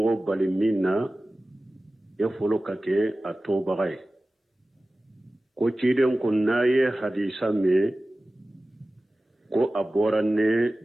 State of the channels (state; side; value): normal; both; correlation 0.96